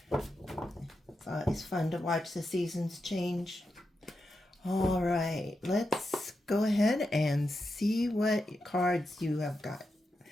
It's always fun to watch the seasons change. All right, let's go ahead and see what cards you have got.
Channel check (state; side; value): normal; both; correlation 0.87